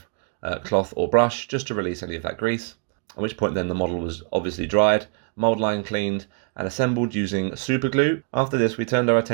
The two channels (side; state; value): left; quieter; 38.1 dB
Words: cloth or brush just to release any of that grease, at which point then the model was obviously dried, mould line cleaned and assembled using super glue. After this we turned our